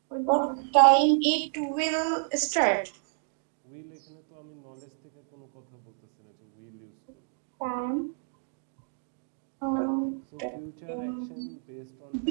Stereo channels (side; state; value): left; silent; digital silence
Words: What time it will start? Will এখানে তো আমি নলেজ থেকে কোনো কথা বলতেছি না যে উইল ইউজ করব। Time so future action based on